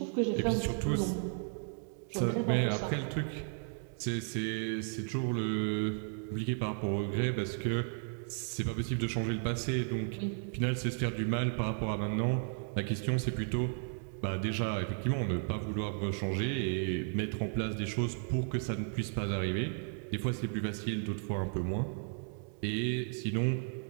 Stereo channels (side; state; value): left; silent; 55 dB below the other